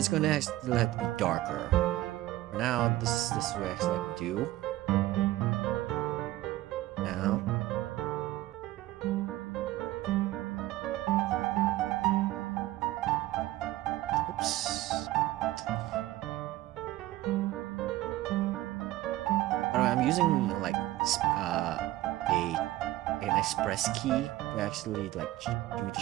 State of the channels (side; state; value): left; quieter; 16.2 dB